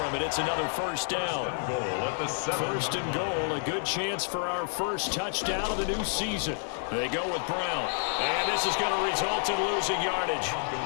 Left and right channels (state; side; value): silent; right; 58 dB below the other